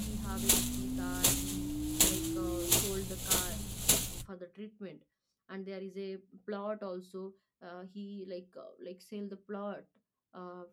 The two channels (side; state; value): both; identical; correlation 1.00